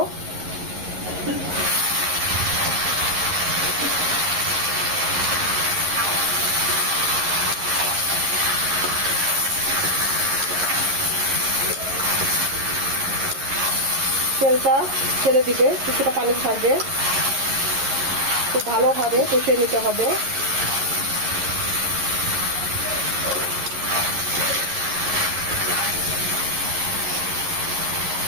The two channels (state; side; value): late; left; 11 ms